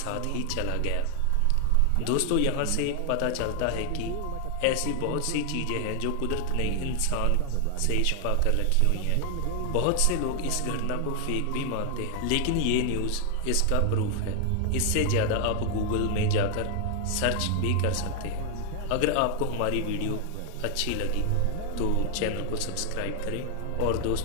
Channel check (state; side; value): different; both; correlation 0.00